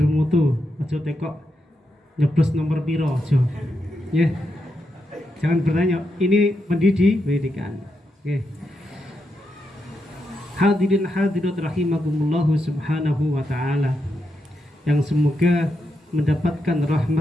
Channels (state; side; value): normal; both; correlation 0.84